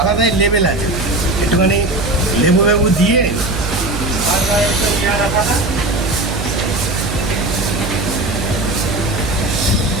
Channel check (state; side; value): noise; right; hum, 6 dB below the sound